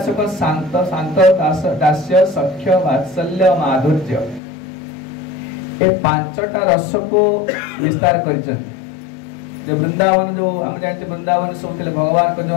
से को शांत शांत दास्य सख्य वात्सल्य माधुर्य ए 5टा रस को विस्तार करिछन जे वृंदावन जो हम जानते वृंदावन सब थिले भगवान को जो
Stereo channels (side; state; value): right; drops out; at 4.4 s